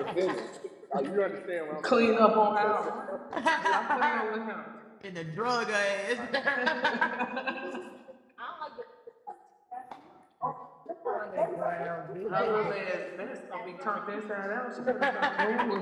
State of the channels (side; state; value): both; identical; correlation 1.00